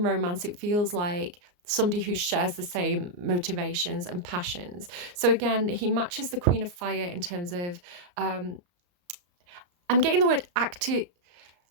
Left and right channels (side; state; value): left; late; 34 ms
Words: romance, it feels like somebody who shares the same motivations and passions. So again, he matches the Queen of Fire in terms of, I'm getting the word active.